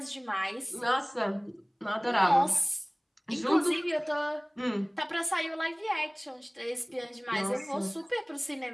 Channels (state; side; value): identical; both; correlation 1.00